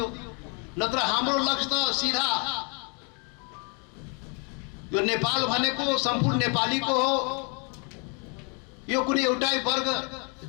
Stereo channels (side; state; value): right; quieter; 36.4 dB